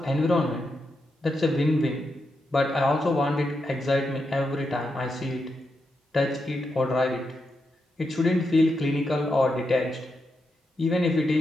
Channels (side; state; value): both; normal; correlation 0.85